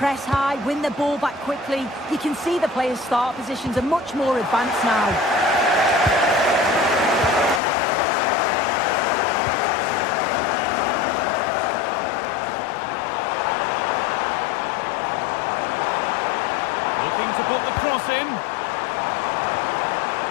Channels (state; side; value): drops out; right; at 7.6 s